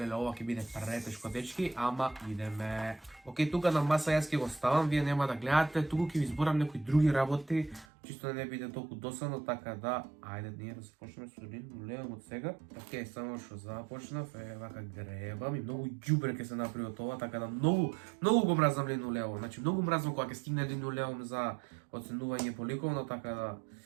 ова ќе биде претешко, дечки, ама идеме. Океј, тука на маса јас ќе го ставам, вие нема да гледате, туку ќе ви зборам некои други работи, чисто да не биде толку досадно, така да, ајде ние да започнеме со линолеумот сега. Океј, само што започнав, вака гребам и многу ѓубре ќе се направи од ова, така да многу го мразам линолеум. Значи многу мразам кога ќе стигне линолеум за оценување по ликовно, така да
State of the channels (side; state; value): left; drops out; at 7.9 s